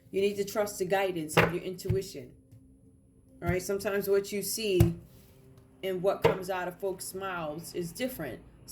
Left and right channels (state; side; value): identical; both; correlation 1.00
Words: You need to trust the guidance of your intuition. All right, sometimes what you see and what comes out of folks' mouths is different.